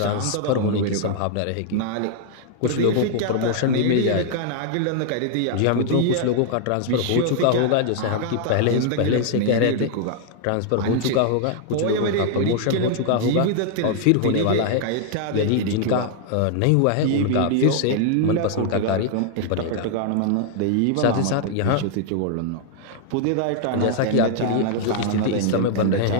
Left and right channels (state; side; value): different; both; correlation 0.00